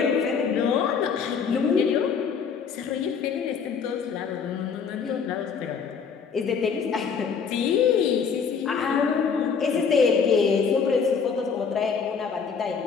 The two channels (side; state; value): right; quieter; 6.1 dB